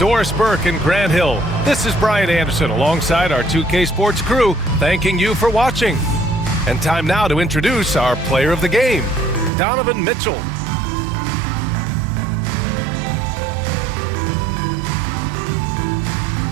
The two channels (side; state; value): left; drops out; at 9.5 s